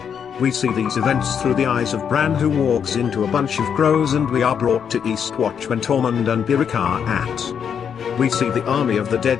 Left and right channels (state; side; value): quieter; right; 7.6 dB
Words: We see these events through the eyes of Bran, who walks into a bunch of crows, and we are brought to Eastwatch when Tormund and Beric are at. We see the army of the